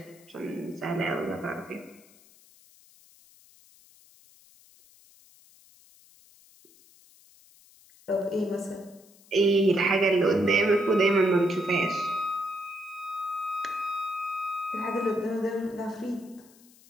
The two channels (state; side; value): noise; left; hiss, 27 dB below the sound